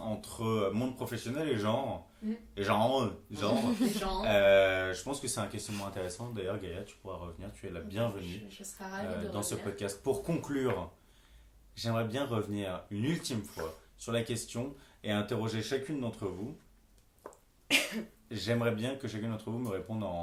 entre monde professionnel et genre. Et genre. Les gens. Je pense que c'est un questionnement intéressant. D'ailleurs, Gaïa, tu pourras revenir. Tu es la bienvenue Je serais ravie de dans ce revenir. podcast. Pour conclure, j'aimerais bien revenir une ultime fois sur la question et interroger chacune d'entre vous. J'aimerais bien que chacune d'entre vous me réponde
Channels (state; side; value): identical; both; correlation 1.00